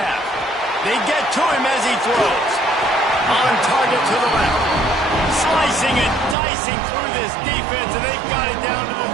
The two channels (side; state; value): left; drops out; at 6.4 s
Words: They get to him as he throws. On target to the left. Slicing and dicing through this defense, and they've got it down to the